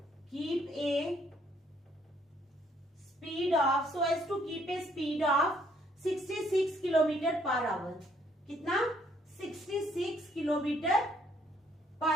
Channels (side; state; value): both; normal; correlation 0.67